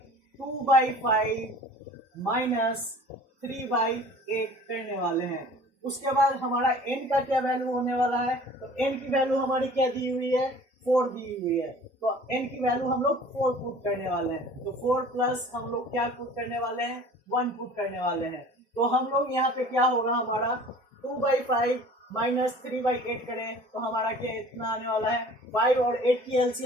2/5 माइनस 3/8 करने वाले हैं। उसके बाद हमारा n का क्या वैल्यू होने वाला है, तो n की वैल्यू हमारी क्या दी हुई है, 4 दी हुई है। तो n की वैल्यू हम लोग 4 पुट करने वाले हैं। तो 4 प्लस हम लोग क्या पुट करने वाले हैं, 1 पुट करने वाले हैं। तो हम लोग यहाँ पे क्या होगा हमारा 2/5 माइनस 3/8 करें तो हमारा क्या इतना आने वाला है, 5 और 8 की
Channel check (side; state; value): both; normal; correlation 0.46